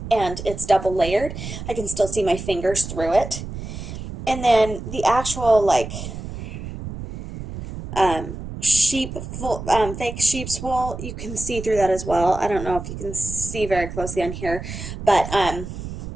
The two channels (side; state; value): right; noise; rumble, 9 dB below the sound